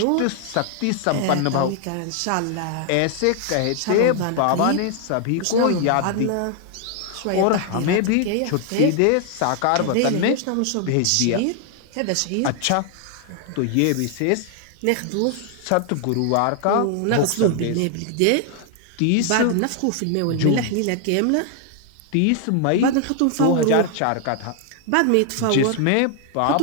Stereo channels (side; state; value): both; different; correlation 0.00